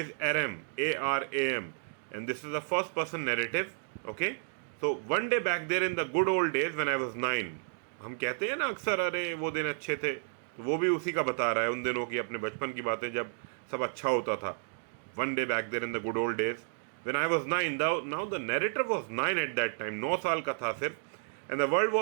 Aram, Aram, and this is a first-person narrative. Okay, so one day back there in the good old days when I was 9. हम कहते हैं ना अक्सर, अरे वो दिन अच्छे थे, तो वो भी उसी का बता रहा है, उन दिनों की, अपने बचपन की बातें जब सब अच्छा होता था. One day back there in the good old days when I was 9. Now the narrator was 9 at that time. 9 साल का था सिर्फ. And the world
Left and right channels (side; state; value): left; silent; digital silence